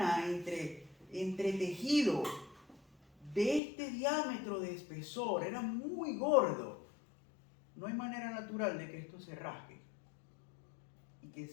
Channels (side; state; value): right; drops out; at 3.6 s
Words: entre entretejido de este diámetro de espesor, era muy gordo. No hay manera natural de que esto se rasgue y que